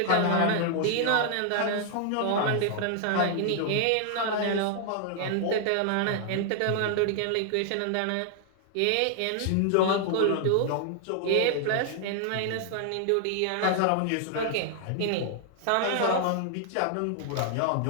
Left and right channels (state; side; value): different; both; correlation 0.00